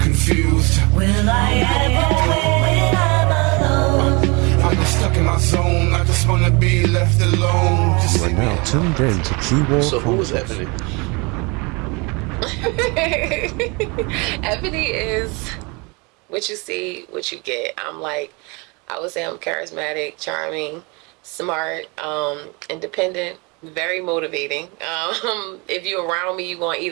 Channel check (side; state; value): left; quieter; 28.7 dB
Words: Will I ever win when I'm alone? I'm just stuck in my zone. I just wanna be left alone. Just You are leave me now alone. tuned in to Q-War So who was Chronicles. Ebony? Ebony is what you see, what you get. I would say I'm charismatic, charming, smart, independent, very motivating. If you're around me, you're going to